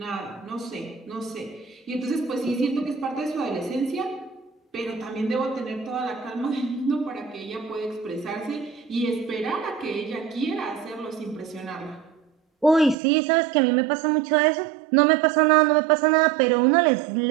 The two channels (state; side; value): drops out; left; at 13.0 s